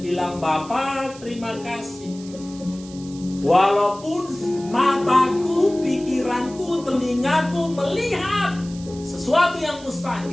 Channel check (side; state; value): right; noise; hiss, 19 dB below the sound